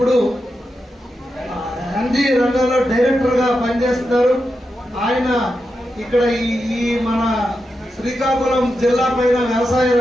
ఎన్జీ రంగంలో డైరెక్టర్ గా పనిచేస్తున్నారు. ఆయన ఇక్కడ ఈ మన శ్రీకాకుళం జిల్లా పైన వ్యవసాయ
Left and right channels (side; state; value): both; normal; correlation 0.88